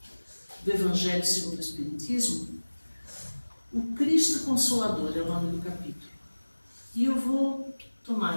do Evangelho segundo o Espiritismo, o Cristo Consolador é o nome do capítulo. E eu vou tomar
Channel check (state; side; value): inverted; both; correlation -1.00